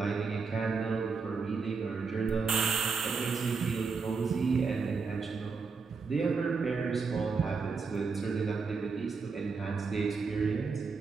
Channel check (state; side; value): quieter; left; 4.9 dB